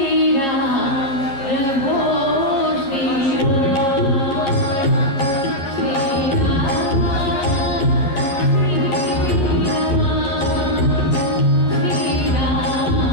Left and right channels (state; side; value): late; right; 11 ms